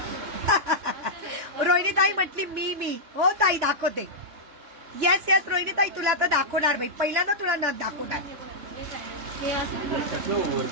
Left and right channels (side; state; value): left; late; 3.4 ms